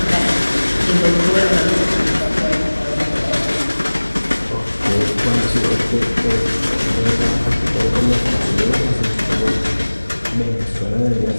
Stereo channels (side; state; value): both; inverted; correlation -1.00